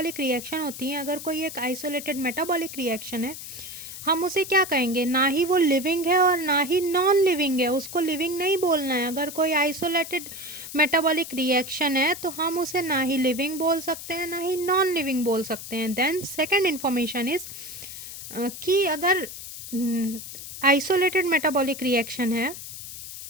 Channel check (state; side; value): noise; left; hiss, 11 dB below the sound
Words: रिएक्शन होती हैं, अगर कोई एक आइसोलेटेड मेटाबॉलिक रिएक्शन है, हम उसे क्या कहेंगे? ना ही वो लिविंग है और ना ही नॉन लिविंग है। उसको लिविंग नहीं बोलना है। अगर कोई आइसोलेटेड मेटाबॉलिक रिएक्शन है तो हम उसे ना ही लिविंग बोल सकते हैं ना ही नॉन लिविंग बोल सकते हैं। देन सेकेंड इन्फॉर्मेशन इज कि अगर आइसोलेटेड मेटाबॉलिक रिएक्शन है,